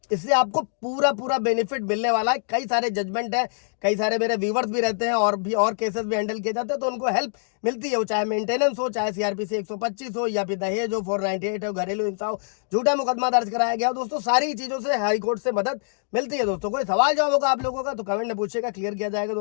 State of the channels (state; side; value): silent; right; digital silence